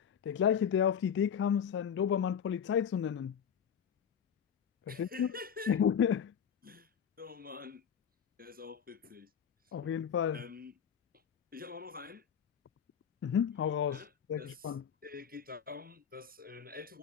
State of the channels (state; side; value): quieter; right; 8.0 dB